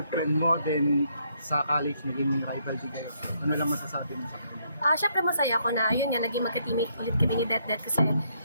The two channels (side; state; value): both; inverted; correlation -0.72